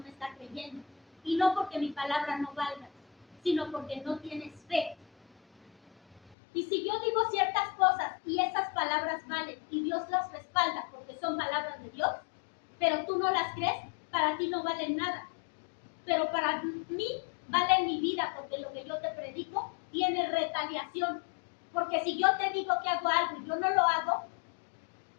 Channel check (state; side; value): drops out; right; at 6.4 s